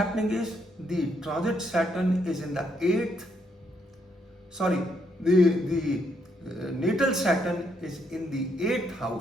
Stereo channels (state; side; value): normal; both; correlation 0.75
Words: is the transit Saturn is in the 8th, the natal Saturn is in the 8th